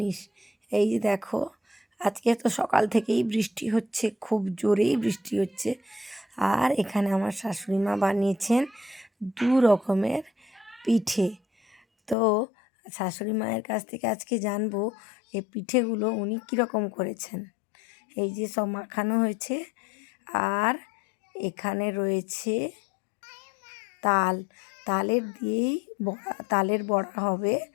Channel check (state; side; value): drops out; right; at 12.2 s